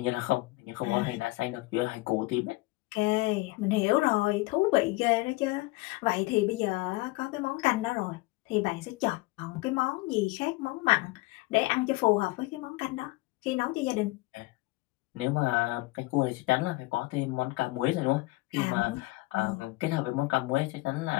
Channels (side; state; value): right; quieter; 21.9 dB